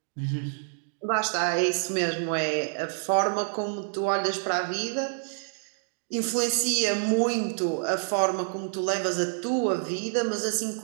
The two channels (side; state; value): left; silent; digital silence